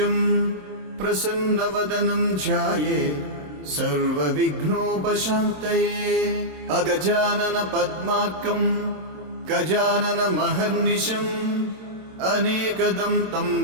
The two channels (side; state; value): left; late; 27 ms